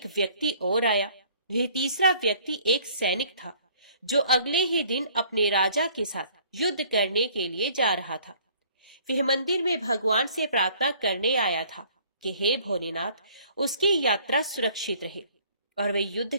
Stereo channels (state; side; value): inverted; both; correlation -0.56